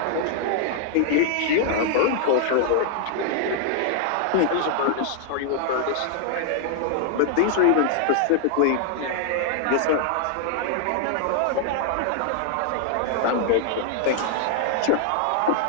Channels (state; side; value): different; both; correlation 0.00